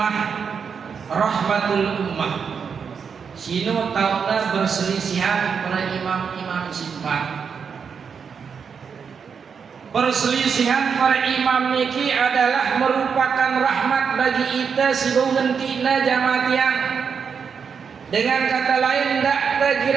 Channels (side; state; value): left; quieter; 6.4 dB